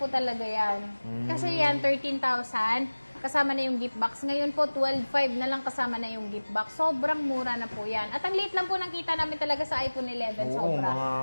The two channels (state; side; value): inverted; both; correlation -1.00